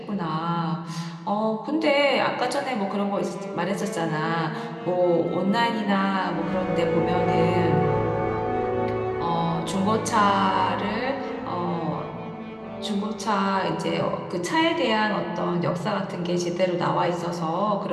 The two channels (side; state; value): both; identical; correlation 1.00